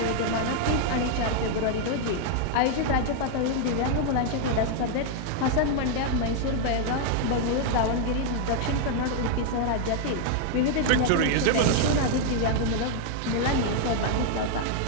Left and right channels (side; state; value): both; different; correlation 0.00